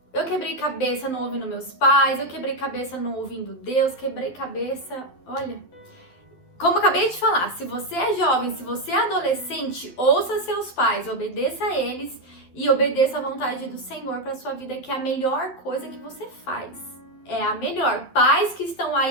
Eu quebrei cabeça não ouvindo meus pais, eu quebrei cabeça não ouvindo Deus, quebrei cabeça, olha... Como eu acabei de falar, se você é jovem, se você é adolescente, ouça seus pais, obedeça a eles e obedeça a vontade do Senhor para sua vida, que é a melhor coisa que você faz. É a melhor. Pais que estão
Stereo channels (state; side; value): late; right; 12 ms